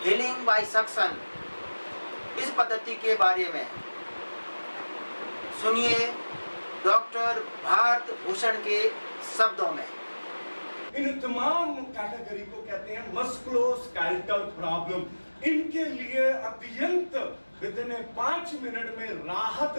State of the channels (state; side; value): inverted; both; correlation -1.00